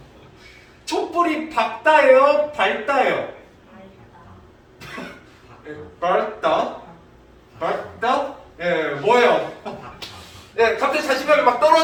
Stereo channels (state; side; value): identical; both; correlation 1.00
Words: 촛불이 밝다예요? 밝다예요? 밝다? 밝다? 예, 뭐예요? 예, 갑자기 자신감이 막